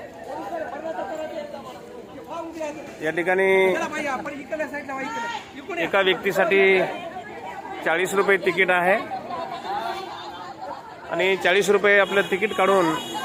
या ठिकाणी एका व्यक्तीसाठी 40 रुपये तिकीट आहे आणि 40 रुपये आपलं तिकीट काढून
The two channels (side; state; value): both; identical; correlation 1.00